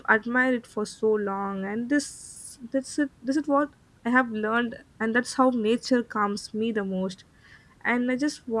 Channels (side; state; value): both; identical; correlation 1.00